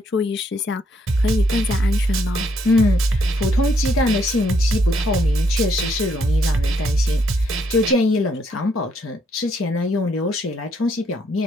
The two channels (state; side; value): normal; both; correlation 0.72